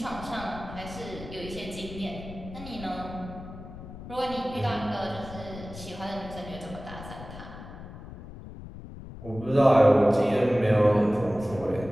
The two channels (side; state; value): left; noise; rumble, 13 dB below the sound